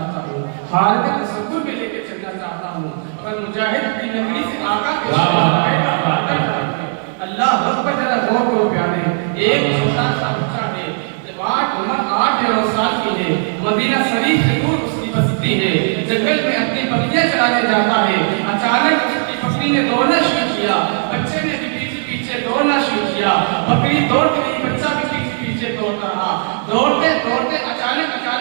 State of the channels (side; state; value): left; silent; 59 dB below the other